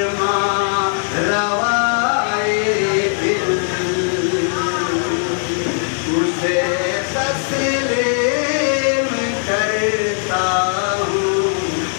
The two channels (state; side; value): silent; right; 61 dB below the other